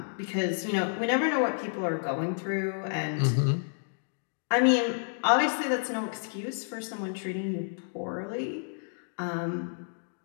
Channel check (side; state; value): right; silent; digital silence